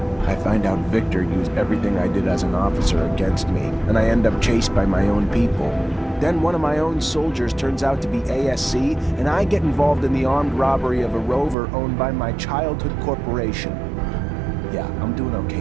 I find out Victor used everything I did as an officer against me, and I end up chased by my own people. Then one of my own soldiers turns out to be ASC, and I get involved in the armed robbery of a rover owned by my childhood corporation. Yeah, I'm doing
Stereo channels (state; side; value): drops out; left; at 11.6 s